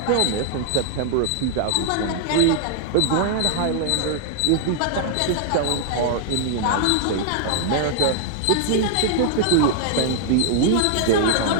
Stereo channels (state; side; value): different; both; correlation -0.01